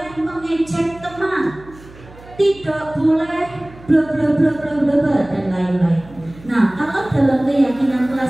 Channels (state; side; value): noise; right; hum, 21 dB below the sound